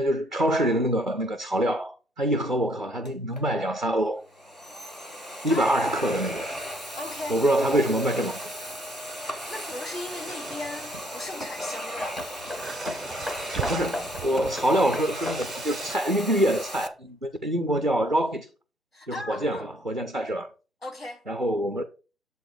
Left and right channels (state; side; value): normal; both; correlation 0.65